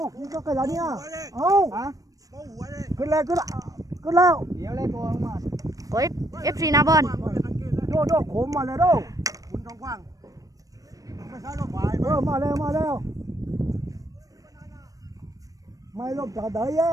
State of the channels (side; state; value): left; late; 0.17 ms